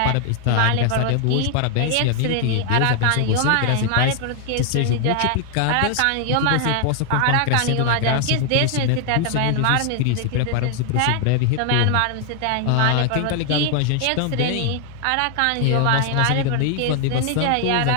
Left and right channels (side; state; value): both; different; correlation 0.00